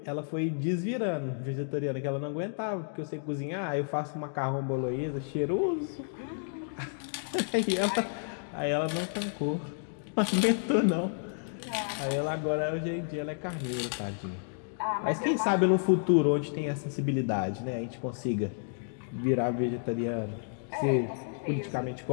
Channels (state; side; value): silent; right; digital silence